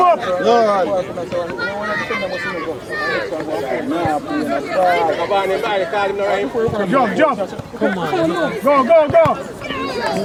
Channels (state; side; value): identical; both; correlation 1.00